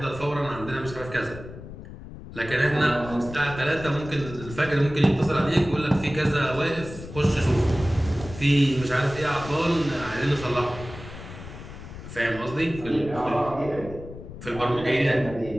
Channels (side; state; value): left; noise; rumble, 13 dB below the sound